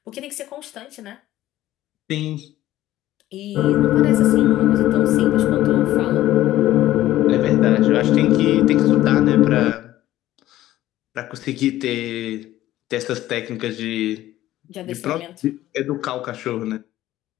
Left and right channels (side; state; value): right; quieter; 14.5 dB